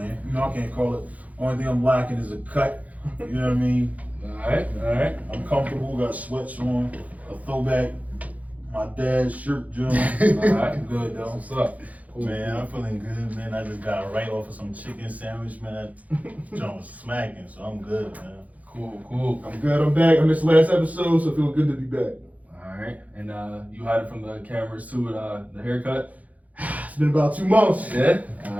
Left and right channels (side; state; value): left; late; 0.073 ms